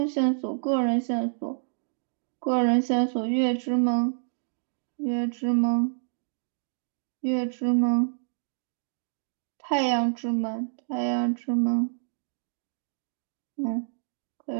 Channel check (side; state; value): left; silent; digital silence